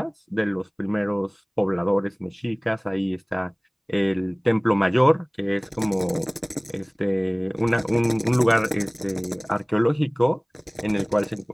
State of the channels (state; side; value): identical; both; correlation 1.00